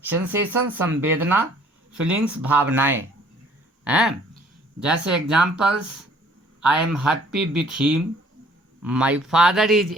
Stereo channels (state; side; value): normal; both; correlation 0.57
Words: सेंसेशन संवेदना, फीलिंग्स भावनाएं हैं. जैसे examples, I am happy with him, my father is